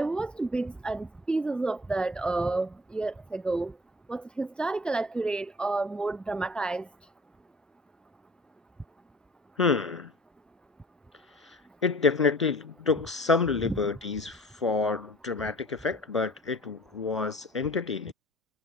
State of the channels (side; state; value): both; normal; correlation 0.47